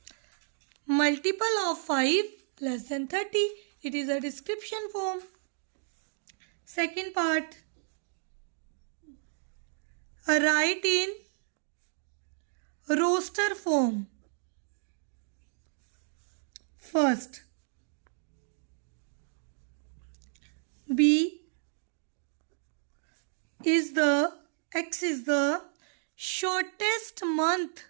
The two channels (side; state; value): left; silent; digital silence